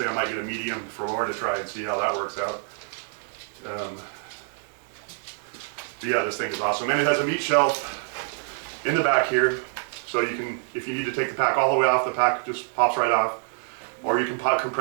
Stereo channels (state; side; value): silent; left; 61 dB below the other